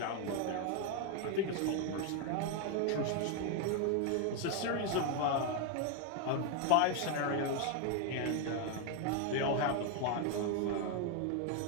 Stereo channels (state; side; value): different; both; correlation 0.01